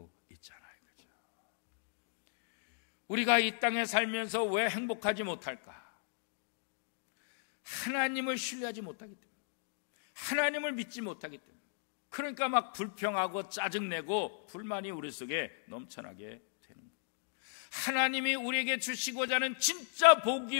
있잖아요. 그죠? 우리가 이 땅에 살면서 왜 행복하지 못할까? 하나님을 신뢰하지 못하기 때문에, 하나님을 믿지 못하기 때문에, 그러니까 막 불평하고 짜증내고 불만이 우리 속에 넘쳐나게 되는 거예요. 하나님이 우리에게 주시고자 하는 진짜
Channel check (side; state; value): right; silent; digital silence